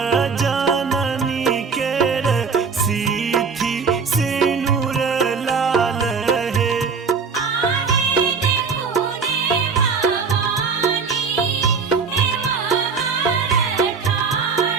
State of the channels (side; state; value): left; quieter; 5.3 dB